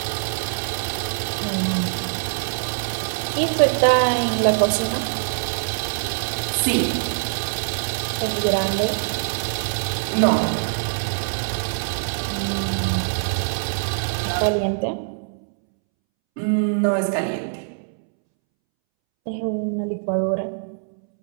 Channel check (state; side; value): silent; left; 63 dB below the other